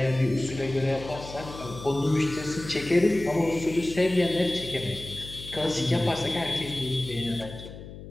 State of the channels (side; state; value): left; noise; hum, 13 dB below the sound